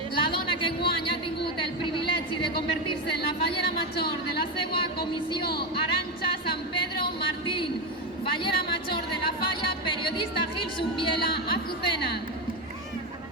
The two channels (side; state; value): both; normal; correlation 0.12